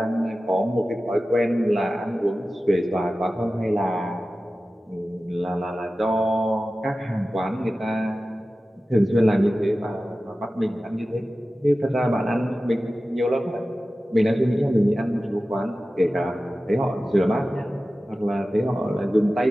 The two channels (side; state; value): both; normal; correlation 0.95